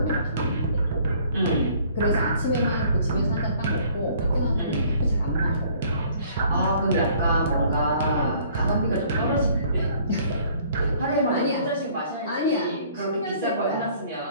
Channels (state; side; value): inverted; both; correlation -0.57